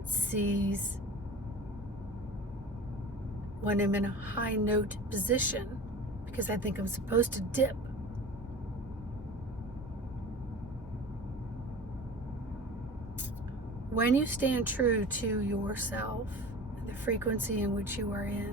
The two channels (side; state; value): both; normal; correlation 0.37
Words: when I'm in a high note position, because I think I'm supposed to dip. When you stand true to yourself and the frequency in which you are